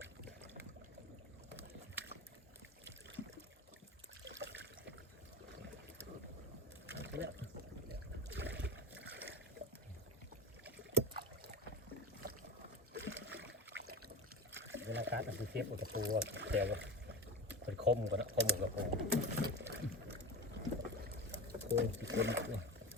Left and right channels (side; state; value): both; normal; correlation 0.26